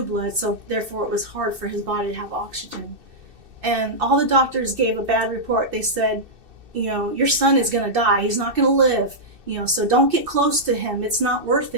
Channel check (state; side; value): late; left; 2.6 ms